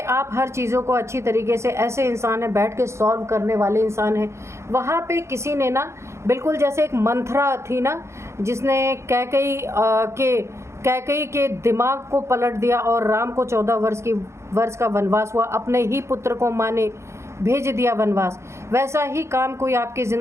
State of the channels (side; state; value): left; late; 0.13 ms